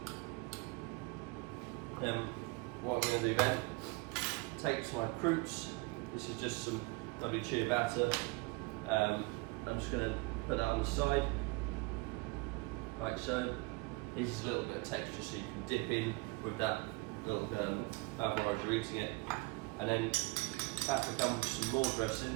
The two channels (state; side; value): quieter; left; 26.0 dB